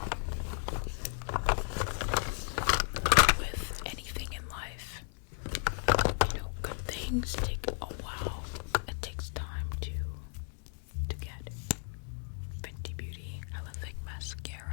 with anything in life, you know, good things take a while. It takes time to get. Fenty Beauty, hella thick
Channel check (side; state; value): right; silent; 55 dB below the other